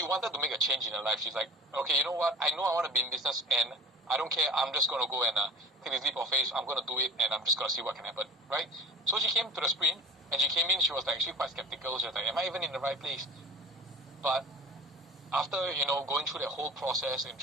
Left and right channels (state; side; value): normal; both; correlation 0.41